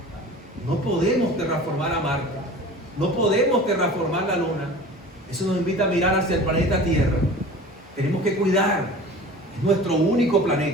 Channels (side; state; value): both; normal; correlation 0.40